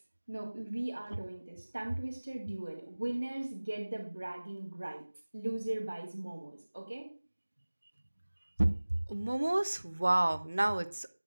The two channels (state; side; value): inverted; both; correlation -1.00